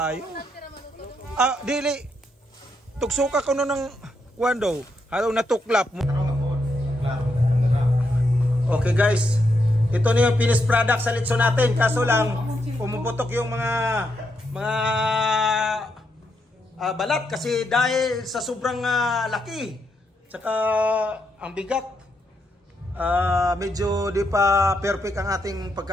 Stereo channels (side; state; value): both; normal; correlation 0.80